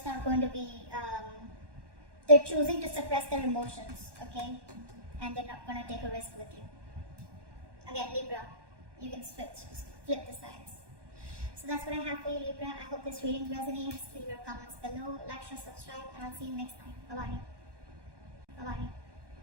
not going to be, they're choosing to suppress their emotions, okay? And they're not going to take a risk with you. Again, Libra, you can flip the sides. So that's what I have for you, Libra. I hope this reading resonates. Leave your comments below, like, share, subscribe, and I'll see you next time. Bye-bye. Bye-bye.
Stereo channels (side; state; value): left; late; 1.1 ms